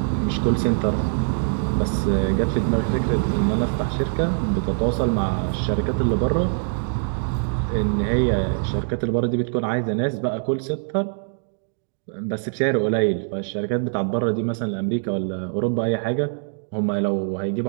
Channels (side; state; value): left; silent; digital silence